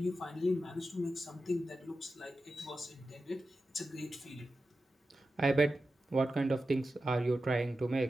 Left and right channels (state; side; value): normal; both; correlation 0.92